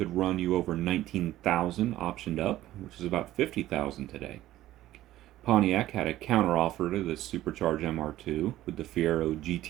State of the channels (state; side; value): quieter; left; 14.6 dB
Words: run you over 19,000 optioned up, which is about 50,000 today. Pontiac had a counteroffer to the supercharged MR2 with the Fiero